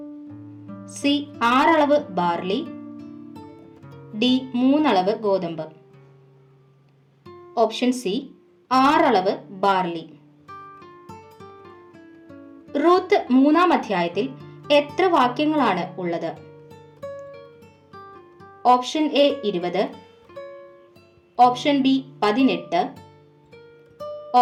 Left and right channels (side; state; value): both; identical; correlation 1.00